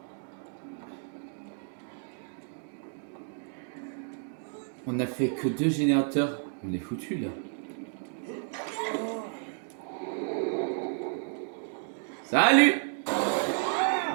On a fait que 2 générateurs. On est foutu là. Salut!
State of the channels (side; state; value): left; silent; 57 dB below the other